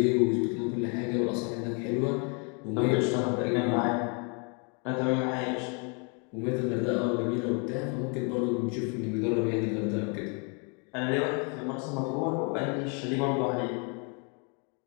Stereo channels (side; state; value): right; quieter; 36.2 dB